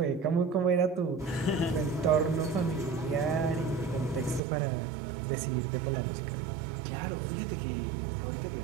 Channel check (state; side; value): drops out; left; at 4.4 s